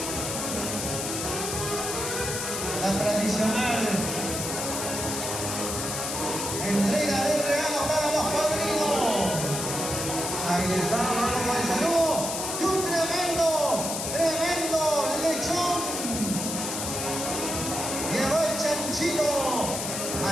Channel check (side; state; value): left; noise; hiss, 3 dB below the sound